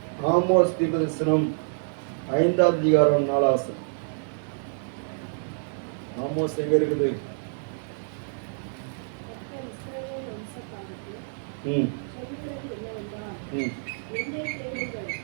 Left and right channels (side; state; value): left; silent; digital silence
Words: ஆமோஸ் தீர்க்கதரிசனம் 5வது அதிகாரம் 4வது வசனம். ஆமோஸ் எங்க இருக்குது?